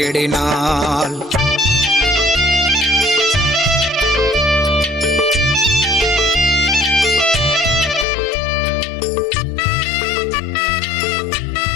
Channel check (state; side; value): drops out; right; at 8.1 s